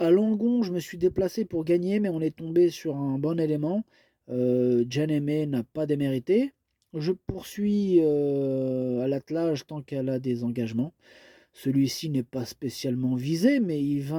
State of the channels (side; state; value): both; identical; correlation 1.00